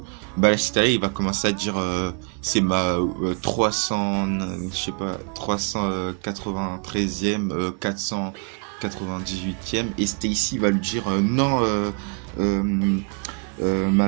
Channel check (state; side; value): quieter; left; 37.8 dB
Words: Balashitara il va commencer à dire c'est ma 393e 498e et Stacy va lui dire non